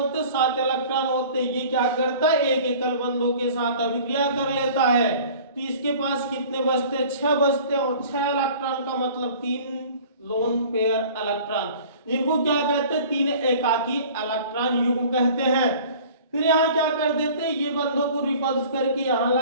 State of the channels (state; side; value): inverted; both; correlation -0.46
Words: हैं, 7 इलेक्ट्रॉन होते हैं। ये क्या करता है, एक एकल बंधों के साथ अभिक्रिया कर लेता है। तो इसके पास कितने बचते हैं, 6 बचते हैं। और 6 इलेक्ट्रॉन का मतलब 3 लोन पेयर इलेक्ट्रॉन, जिनको क्या कहते हैं, 3 एकाकी इलेक्ट्रॉन युग्म कहते हैं। फिर यहाँ क्या कर देते हैं, ये बंधों को रिपल्स करके यहाँ